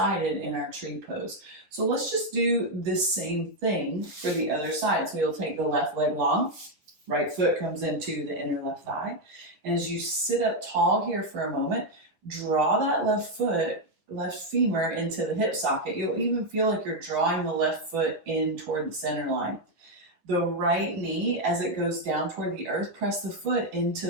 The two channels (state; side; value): late; left; 10 ms